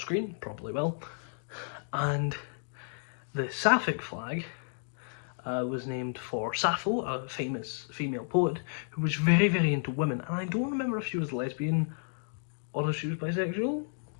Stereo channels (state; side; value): silent; right; digital silence